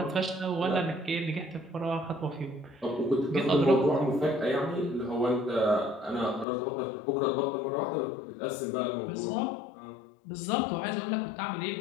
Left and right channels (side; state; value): right; drops out; at 6.5 s